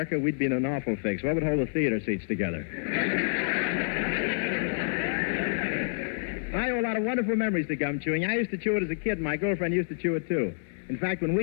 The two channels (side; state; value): right; silent; digital silence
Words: we'd be in an awful fix. What would hold the theater seats together? I owe a lot of wonderful memories to gum chewing. I used to chew it as a kid, and my girlfriend used to chew it, too. In fact, when